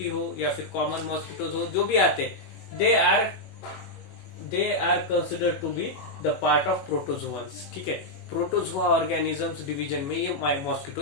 हो या फिर कॉमन मॉस्किटोज हो, जो भी आते हैं, they are considered to be the part of protozoans, ठीक है। प्रोटोजोआ ऑर्गेनिजम्स डिवीजन में ये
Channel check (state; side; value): late; right; 21 ms